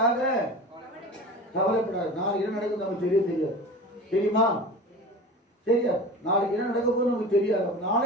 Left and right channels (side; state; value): both; normal; correlation 0.34